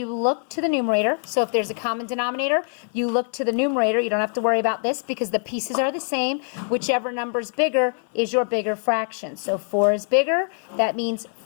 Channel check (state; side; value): silent; right; 55 dB below the other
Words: look to the numerator. So if there's a common denominator, you look to the numerator. You don't have to worry about this because the pieces are the same. Whichever number's bigger is your bigger fraction. So 4 is bigger. That means